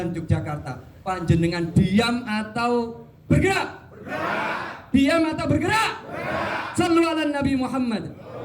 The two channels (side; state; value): both; identical; correlation 1.00